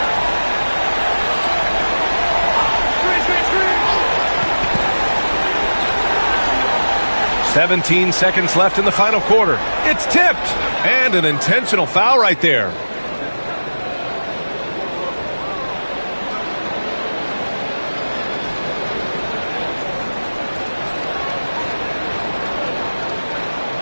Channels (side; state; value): both; inverted; correlation -1.00